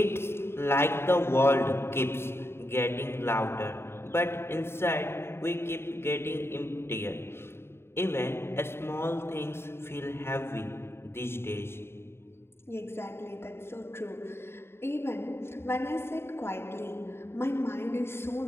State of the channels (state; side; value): late; right; 0.12 ms